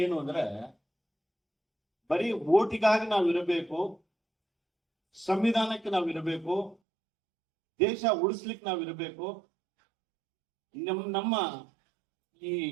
ಏನು ಅಂದ್ರೆ ಬರೀ ಓಟಿಗಾಗಿ ನಾವು ಇರಬೇಕು, ಸಂವಿಧಾನಕ್ಕೆ ನಾವು ಇರಬೇಕು, ದೇಶ ಉಳಿಸ್ಲಿಕ್ಕೆ ನಾವು ಇರಬೇಕು. ನಮ್ಮ ಈ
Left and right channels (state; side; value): drops out; left; at 6.8 s